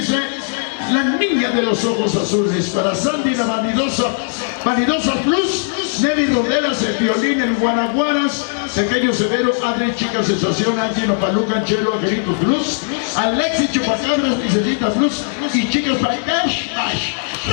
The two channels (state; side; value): silent; right; digital silence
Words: La Niña de los Ojos Azules. Para Sandy la Vanidosa Plus, Nelly Rodelas, el violín, el Guanaguaras, Pequeño Severo, Adri, Chica Sensación, Angelo Paluca, Anchelo, Angelito Plus, Alexis Chupacabras, Licencita Plus y Chicas Baitash.